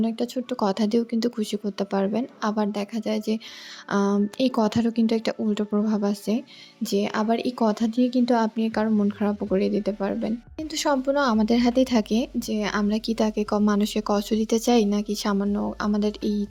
একটা ছোট্ট কথা দিয়েও কিন্তু খুশি করতে পারবেন। আবার দেখা যায় যে এই কথারও কিন্তু একটা উল্টো প্রভাব আছে যে আবার এই কথা দিয়ে কিন্তু আপনি কারো মন খারাপও করে দিতে পারবেন। কিন্তু সম্পূর্ণ আমাদের হাতেই থাকে যে আমরা কি তাকে মানুষকে কষ্ট দিতে চাই নাকি সামান্য আমাদের এই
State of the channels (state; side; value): identical; both; correlation 1.00